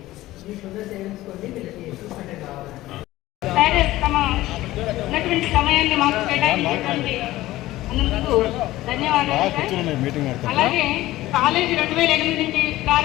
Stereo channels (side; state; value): right; quieter; 16.6 dB